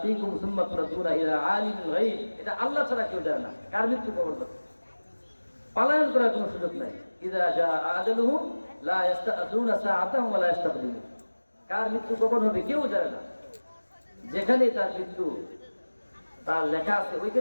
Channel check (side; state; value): both; inverted; correlation -1.00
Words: সুম্মা তুরাদ্দুনা ইলা আলিমিল গায়ব। এটা আল্লাহ ছাড়া কেউ জানে না কার মৃত্যু কখন হবে। পলায়ন করার কোনো সুযোগ নাই। ইযা জা আজালুহুম লা ইস্তাআযুনা সাআতাহুম ওয়া লা ইস্তাকদিমুন। কার মৃত্যু কখন হবে কেউ জানে না। যেখানে তার মৃত্যু তার লেখা আছে